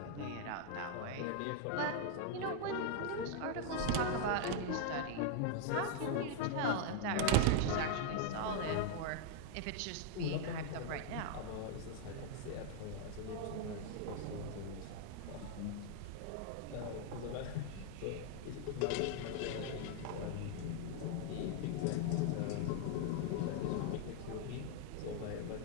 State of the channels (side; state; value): both; different; correlation 0.00